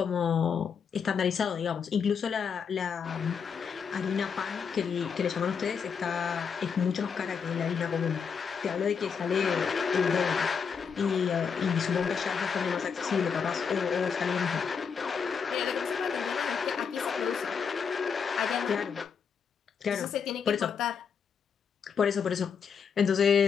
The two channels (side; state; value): right; quieter; 6.4 dB